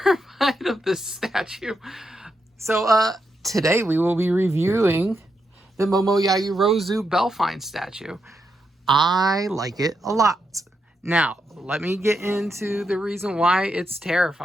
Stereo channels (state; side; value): normal; both; correlation 0.83